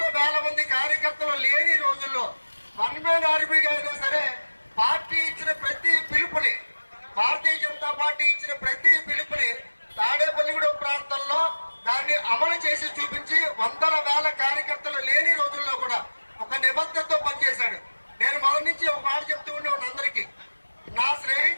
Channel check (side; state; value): both; inverted; correlation -1.00